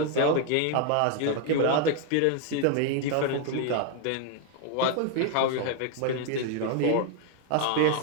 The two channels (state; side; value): different; both; correlation 0.00